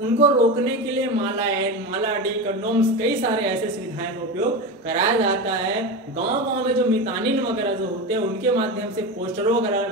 उनको रोकने के लिए माला डी कंडोम्स कई सारे ऐसे सुविधाएं का उपयोग कराया जाता है। गांव-गांव में जो मितानिन वगैरह जो होते हैं उनके माध्यम से पोस्टरों वगैरह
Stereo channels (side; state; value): both; normal; correlation 0.22